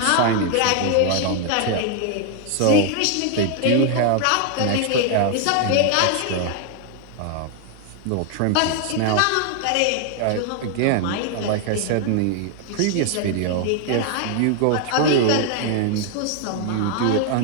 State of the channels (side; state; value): both; different; correlation 0.00